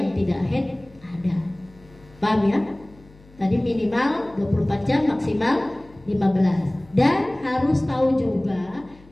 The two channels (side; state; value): left; noise; hum, 26 dB below the sound